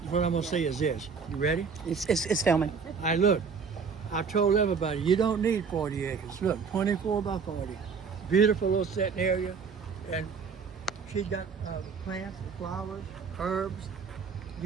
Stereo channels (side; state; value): left; quieter; 5.7 dB